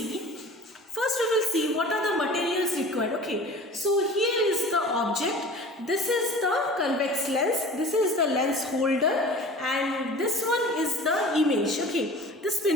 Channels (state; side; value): normal; both; correlation 0.41